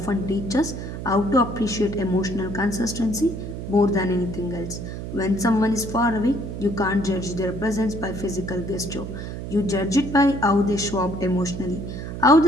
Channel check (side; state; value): right; noise; hum, 7 dB below the sound